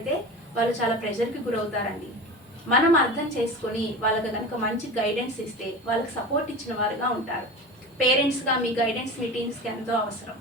వాళ్ళు చాలా ప్రెషర్కి గురవుతారండి. మనం అర్థం చేసుకొని వాళ్ళకి కనుక మంచి గైడెన్స్ ఇస్తే వాళ్ళకి సపోర్ట్ ఇచ్చిన వారుగా ఉంటారు. పేరెంట్స్గా మీ గైడెన్స్ మీ టీమ్స్కి ఎంతో అవసరం.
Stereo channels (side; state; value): both; normal; correlation 0.31